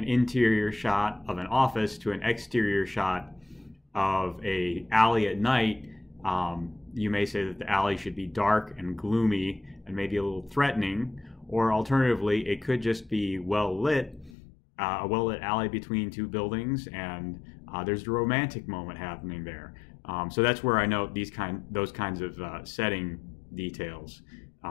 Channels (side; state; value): right; drops out; at 14.3 s